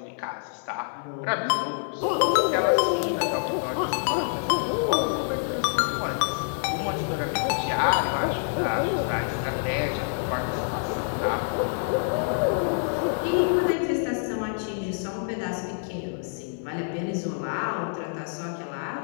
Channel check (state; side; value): silent; right; 56 dB below the other